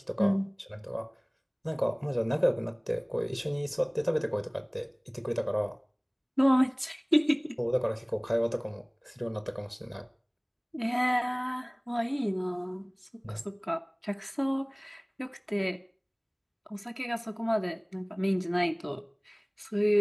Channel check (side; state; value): both; identical; correlation 1.00